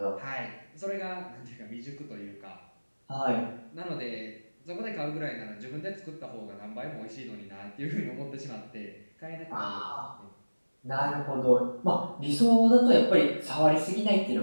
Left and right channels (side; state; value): both; inverted; correlation -1.00